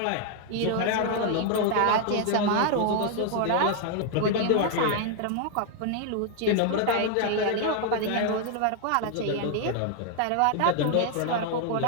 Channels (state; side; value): different; both; correlation 0.00